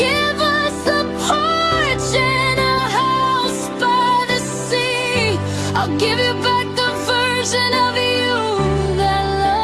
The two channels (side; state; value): both; identical; correlation 1.00